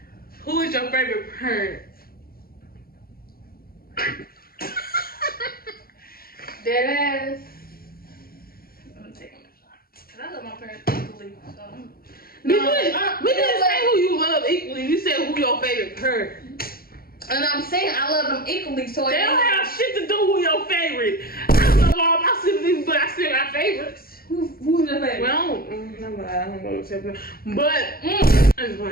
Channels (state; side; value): late; right; 0.43 ms